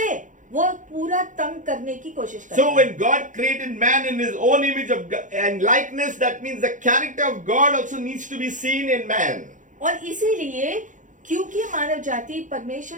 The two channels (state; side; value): late; left; 0.37 ms